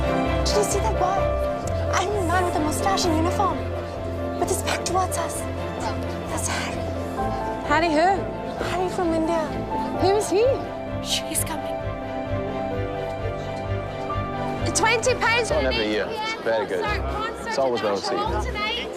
Did you see that boy? I mean, man with a mustache and uniform, with his back towards us. That's Harry. Harry who? Harry from India. Who is he? He's coming. £20 for an 8 p.m. Very good. It's always well received.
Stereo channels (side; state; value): both; identical; correlation 1.00